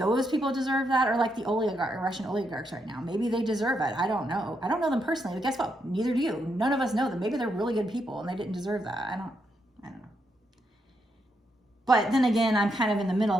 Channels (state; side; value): normal; both; correlation 0.80